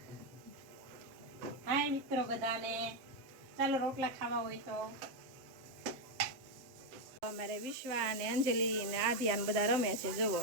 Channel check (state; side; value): late; left; 7.5 ms